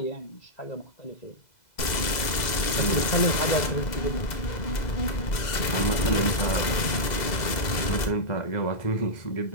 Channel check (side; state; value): right; late; 2.0 ms